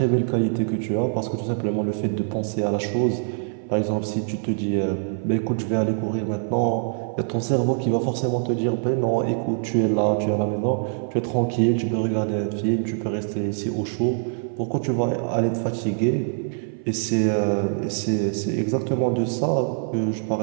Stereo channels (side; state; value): left; silent; 57 dB below the other